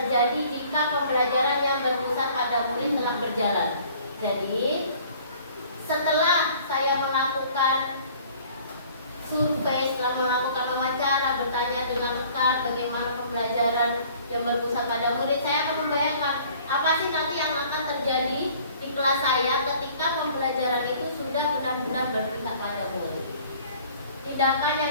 jika pembelajaran yang berpusat pada murid telah berjalan? Jadi, setelah saya melakukan survei, setelah melakukan wawancara, bertanya dengan rekan bagaimana pembelajaran yang berpusat pada murid, saya akan membayangkan apa sih nanti yang akan terjadi di kelas saya ketika pembelajaran itu sudah benar-benar berpusat pada murid. Tindakan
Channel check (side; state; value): both; inverted; correlation -0.53